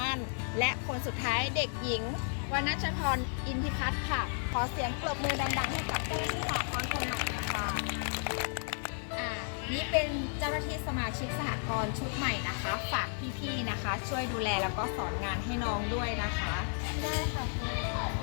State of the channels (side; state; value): right; silent; 55 dB below the other